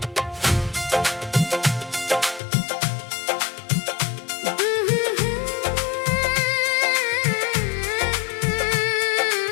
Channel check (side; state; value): right; drops out; at 2.4 s